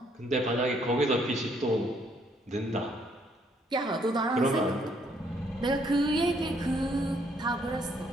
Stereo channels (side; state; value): both; normal; correlation 0.68